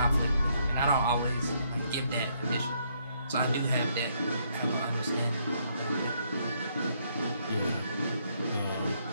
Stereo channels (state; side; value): inverted; both; correlation -0.72